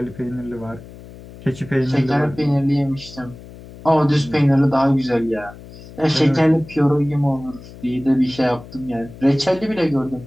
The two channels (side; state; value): left; noise; hum, 17 dB below the sound